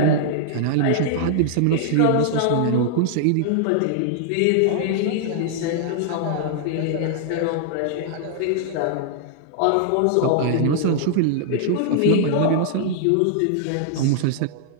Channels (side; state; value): both; different; correlation -0.01